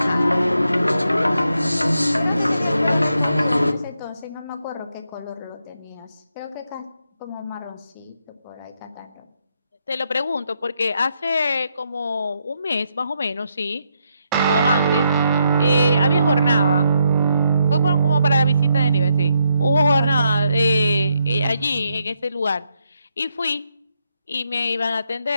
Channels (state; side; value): inverted; both; correlation -0.79